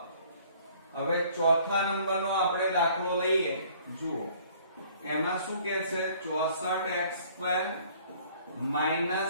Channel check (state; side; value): inverted; both; correlation -0.57